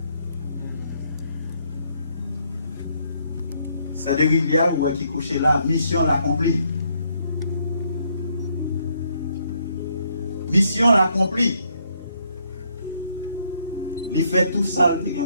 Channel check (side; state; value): both; inverted; correlation -0.71